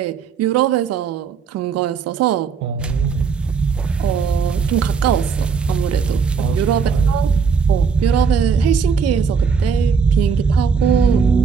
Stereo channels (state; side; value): quieter; left; 5.8 dB